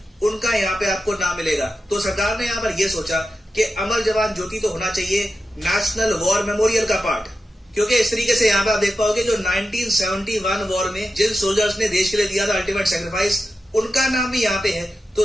उनका यहाँ पे आपको नाम मिलेगा। तो सरकार ने यहाँ पर यह सोचा कि अमर जवान ज्योति तो होना चाहिए नेशनल वॉर मेमोरियल का पार्ट, क्योंकि इस तरीके से यहाँ पे आप देख पाओगे जो 1971 वॉर में जिन सोल्जर्स ने देश के लिए दिया था अल्टीमेट सेक्रीफाइस, उनका नाम भी यहाँ पे है। तो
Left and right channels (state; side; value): normal; both; correlation 0.91